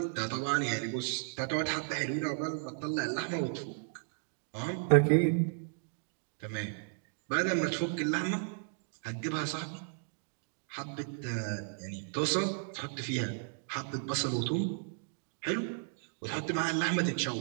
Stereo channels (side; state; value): left; silent; digital silence